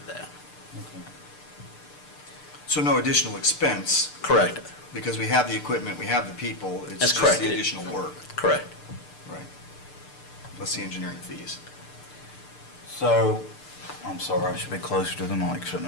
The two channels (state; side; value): late; right; 6.7 ms